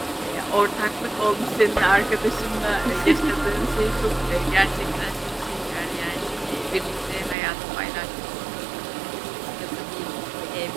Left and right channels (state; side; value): drops out; left; at 7.4 s